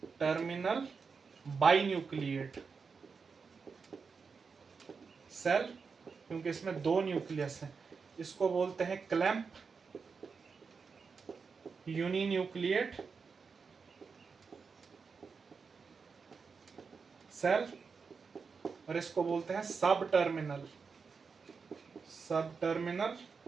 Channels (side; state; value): left; quieter; 5.3 dB